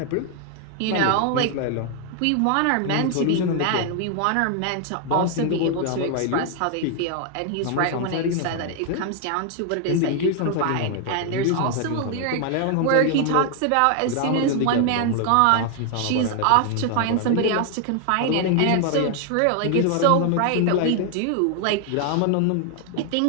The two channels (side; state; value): both; different; correlation 0.00